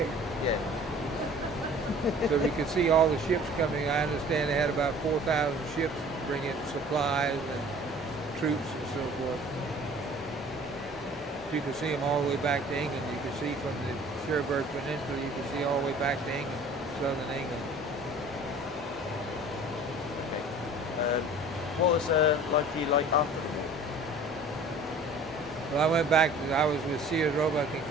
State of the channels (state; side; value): normal; both; correlation 0.47